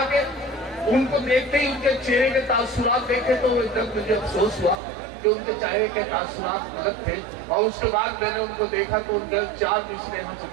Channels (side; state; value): left; drops out; at 4.8 s